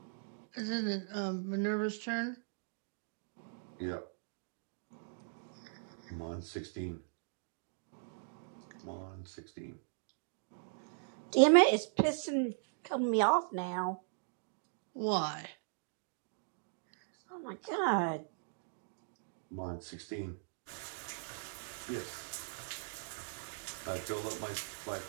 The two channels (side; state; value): left; silent; digital silence